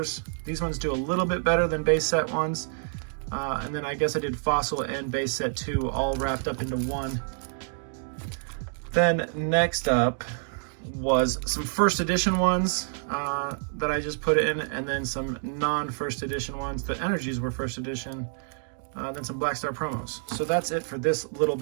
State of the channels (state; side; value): silent; left; digital silence